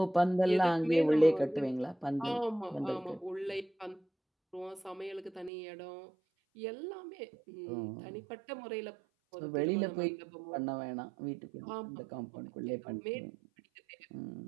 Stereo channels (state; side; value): drops out; left; at 5.5 s